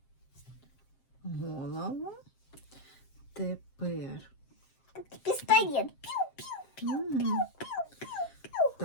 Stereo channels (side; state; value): right; late; 7.6 ms